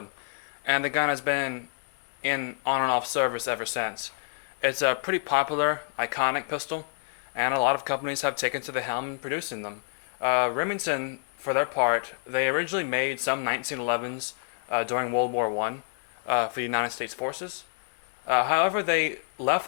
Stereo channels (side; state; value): right; silent; 59 dB below the other